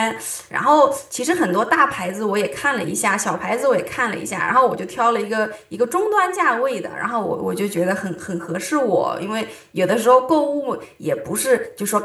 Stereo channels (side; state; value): both; identical; correlation 1.00